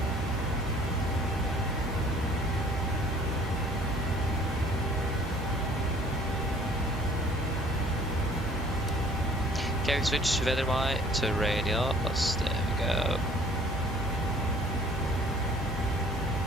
Okay, we switch weather to radios. There we go.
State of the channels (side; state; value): both; normal; correlation 0.55